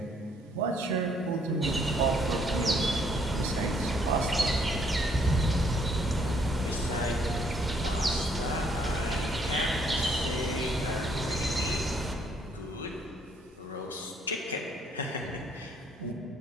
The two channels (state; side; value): normal; both; correlation 0.67